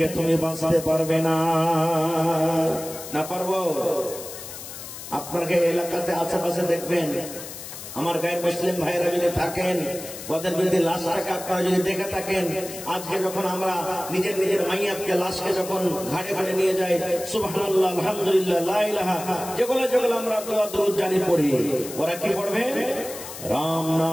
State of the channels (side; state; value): left; noise; hiss, 11 dB below the sound